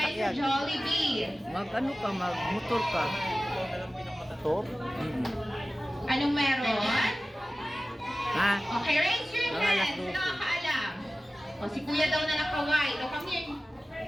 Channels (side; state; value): both; normal; correlation 0.96